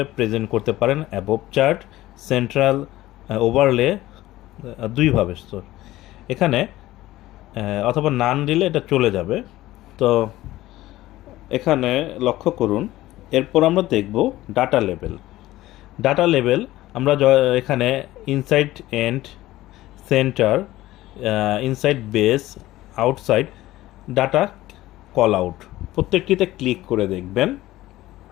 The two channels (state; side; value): quieter; right; 16.3 dB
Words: প্রেজেন্ট করতে পারেন: অ্যাবভ চার্ট, সেন্ট্রাল, ওভারলে, দুইভাবে। এখানে অথবা নান দিলে এটা চলে যাবে। তো এখানে লক্ষ্য করুন। এরপর আমরা দেখব ডাটা লেভেল। আমরা এখানে inside end, center, inside base, outside data callout, প্রত্যেকটিতে ক্লিক করে দেখবেন